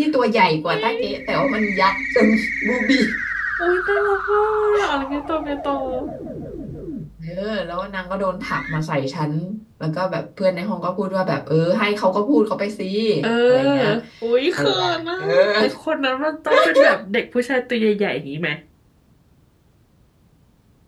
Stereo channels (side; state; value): both; identical; correlation 1.00